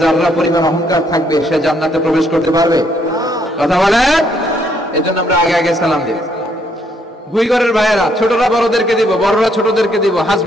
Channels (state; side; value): normal; both; correlation 0.70